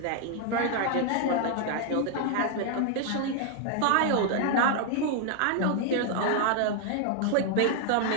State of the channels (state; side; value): different; both; correlation 0.00